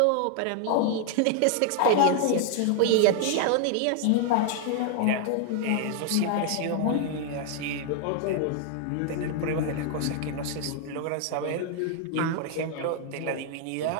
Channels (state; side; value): different; both; correlation 0.00